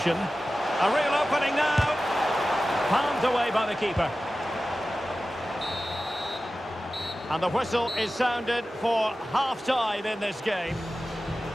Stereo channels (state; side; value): normal; both; correlation 0.95